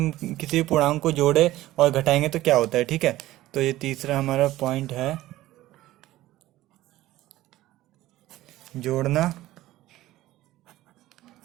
किसी भी पूर्णांक को जोड़े और घटाएंगे तो क्या होता है, ठीक है। तो ये तीसरा हमारा पॉइंट है, जोड़ना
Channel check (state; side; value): quieter; left; 15.9 dB